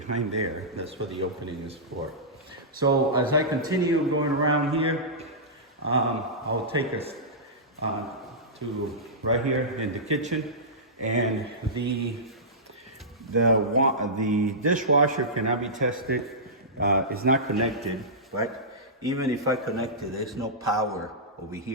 there, that's what the opening is for. So as I continue going around here, I'll take us to right here in the kitchen, and the dishwasher cannot be tested. It's not connected, but even if I connect it, there's no power over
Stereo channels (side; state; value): both; normal; correlation -0.16